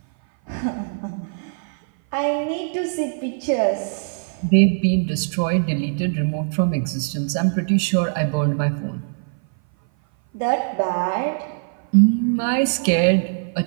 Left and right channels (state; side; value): silent; left; 58 dB below the other